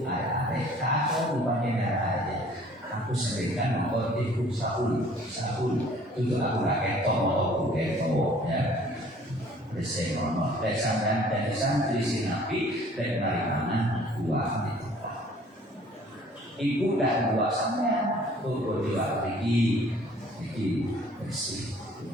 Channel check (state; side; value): normal; both; correlation 0.54